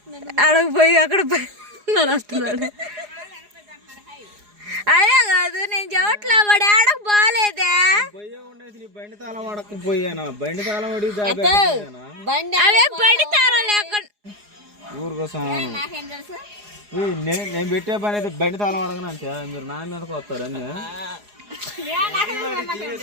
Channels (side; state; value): left; late; 4.8 ms